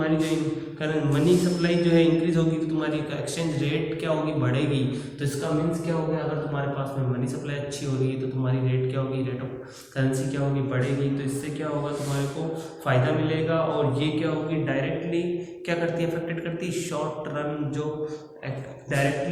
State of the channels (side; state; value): both; identical; correlation 1.00